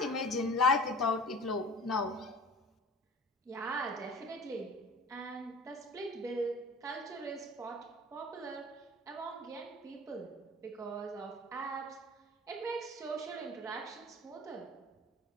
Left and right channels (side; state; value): both; normal; correlation 0.42